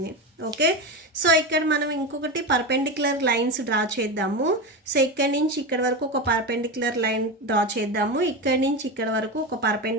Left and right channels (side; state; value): both; normal; correlation 0.19